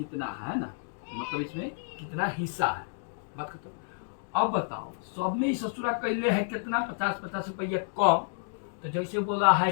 है ना, मतलब इसमें कितना हिस्सा है, बात खत्म। अब बताओ सब में ससुरा कैले है कितना? 50-50 रुपया कम। तो जैसे बोला है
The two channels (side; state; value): right; silent; digital silence